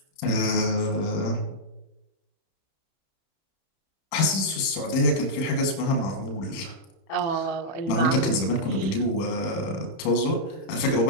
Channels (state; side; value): late; right; 31 ms